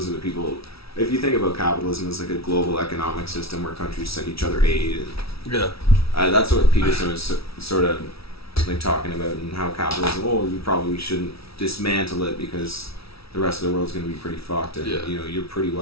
are the people, if you think about capitalism as like a global economic system where countries send each other aid, and that's what Peterson was sort of like talking about, and how capitalism, we probably shouldn't dismantle it because the rest of the world's going to be pretty fucked, and you know, you're pretty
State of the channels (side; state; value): right; late; 0.76 ms